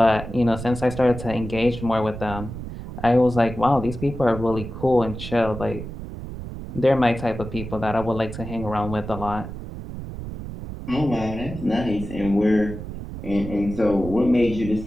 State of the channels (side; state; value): right; noise; rumble, 9 dB below the sound